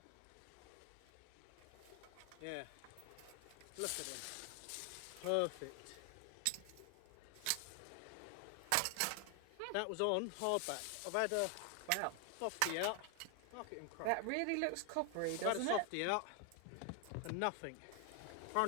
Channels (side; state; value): both; different; correlation 0.00